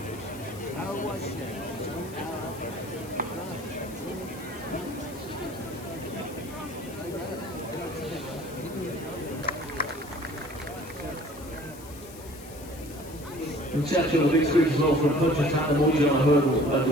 From Churchill, the big screen as well from Punchestown, the Morning on a hurdle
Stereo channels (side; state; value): left; noise; hiss, 18 dB below the sound